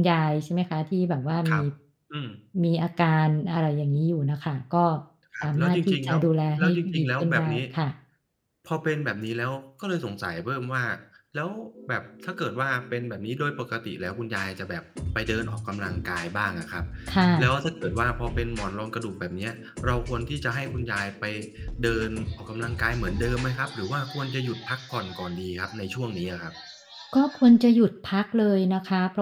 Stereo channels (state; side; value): identical; both; correlation 1.00